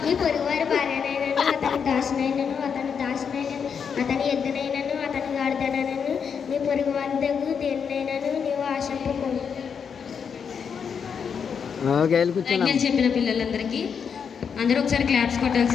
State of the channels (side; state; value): right; quieter; 6.7 dB